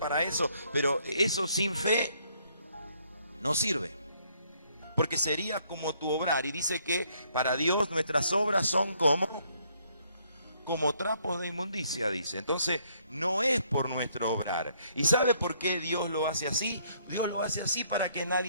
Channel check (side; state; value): both; inverted; correlation -0.68